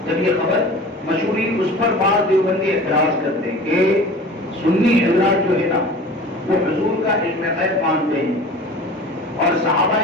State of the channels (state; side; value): normal; both; correlation 0.40